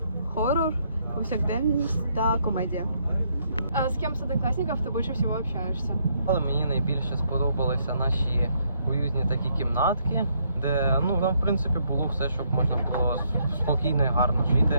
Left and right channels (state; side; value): inverted; both; correlation -0.72